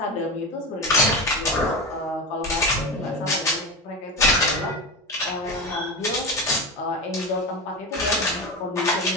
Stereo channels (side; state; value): both; normal; correlation 0.22